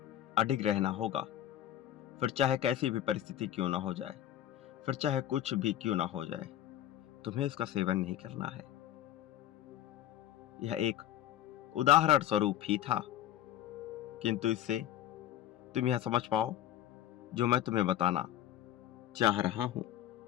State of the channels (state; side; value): quieter; right; 12.1 dB